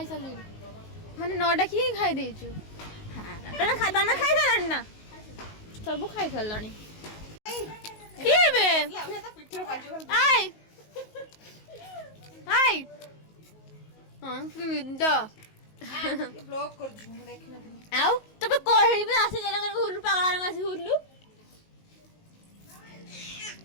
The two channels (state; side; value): late; right; 19 ms